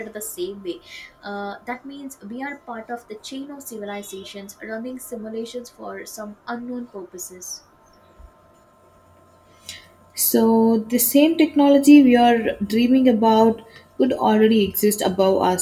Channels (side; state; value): both; identical; correlation 1.00